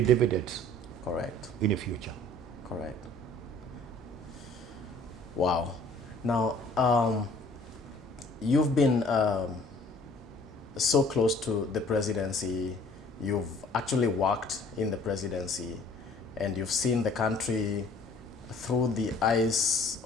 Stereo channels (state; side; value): normal; both; correlation 0.54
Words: dividends. Correct. In the future. Correct. Wow. Now, you've been so close to the presidency. You've actually worked in the presidency, and you've seen the country through the eyes